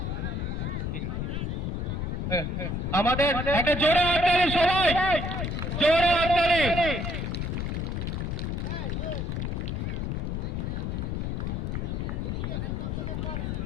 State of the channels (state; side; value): noise; left; rumble, 2 dB below the sound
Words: আমাদের একটা জোরে হাততালি, সবাই জোরে হাততালি।